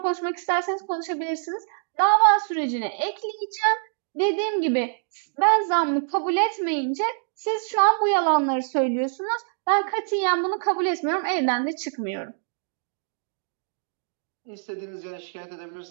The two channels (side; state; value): left; silent; digital silence